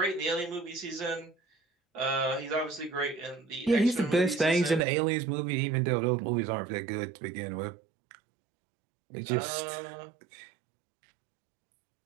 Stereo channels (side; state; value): left; drops out; at 4.8 s